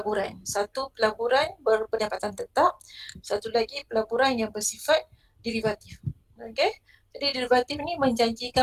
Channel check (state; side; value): identical; both; correlation 1.00